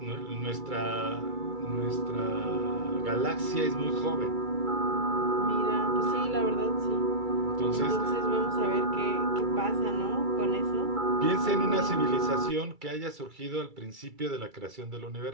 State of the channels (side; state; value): left; late; 2.3 ms